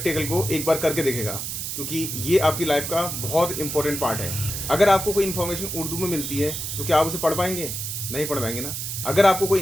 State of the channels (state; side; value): noise; right; hiss, 5 dB below the sound